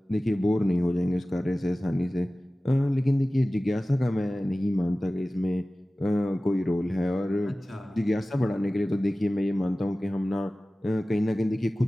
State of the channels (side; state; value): both; normal; correlation 0.97